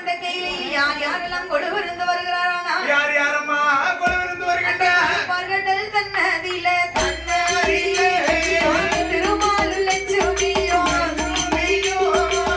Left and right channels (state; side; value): identical; both; correlation 1.00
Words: கையிலையில் யார் யாரெல்லாம் கொலுவிருந்து வருகிறாரானா யாரம்மா கொலுவிருந்து வருகின்றார்கள் தன்னதில திருமாலு லட்சுமியோ